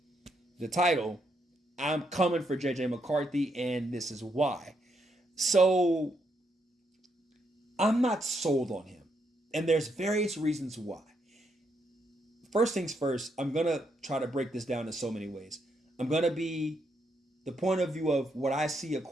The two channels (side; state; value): both; normal; correlation 0.77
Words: the title, I'm coming for JJ McCarthy, and this is why. So I'm not sold on him, and there's various reasons why. First things first, I'm gonna try to break this down in so many ways. I'm gonna be the point of view of what I see a